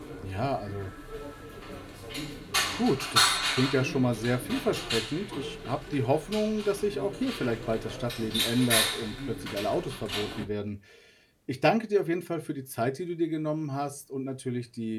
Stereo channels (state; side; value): identical; both; correlation 1.00